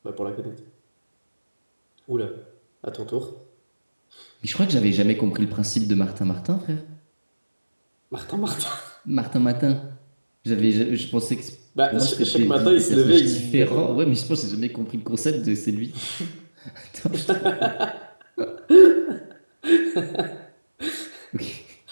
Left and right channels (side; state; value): both; inverted; correlation -1.00